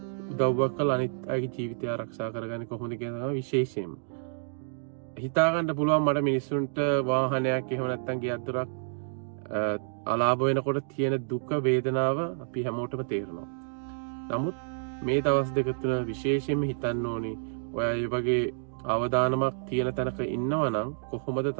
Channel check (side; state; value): left; silent; digital silence